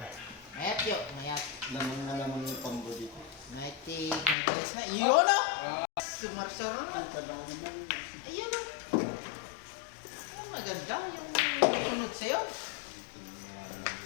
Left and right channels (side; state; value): right; drops out; at 4.4 s